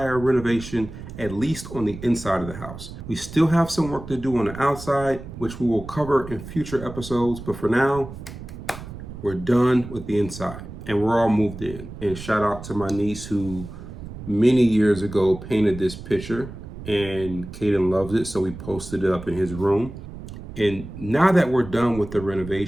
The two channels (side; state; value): right; noise; rumble, 12 dB below the sound